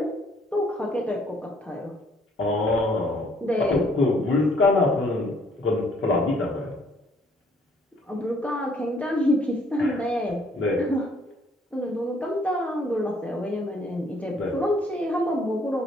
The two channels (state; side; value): normal; both; correlation 0.63